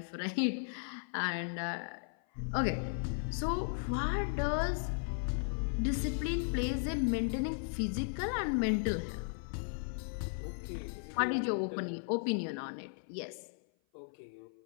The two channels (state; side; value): silent; right; 54 dB below the other